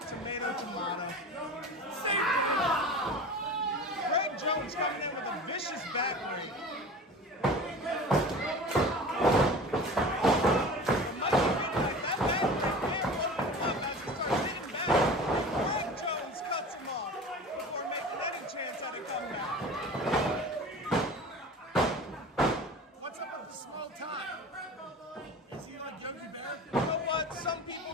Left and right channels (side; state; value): both; normal; correlation 0.36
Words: Tomato, tomato. Say Greg Jones coming in with a vicious back rake. What's up with the small tie? Is he like Yogi Bear? You know what? Some people